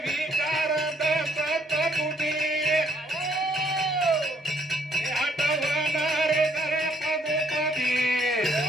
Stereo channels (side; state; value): both; normal; correlation 0.65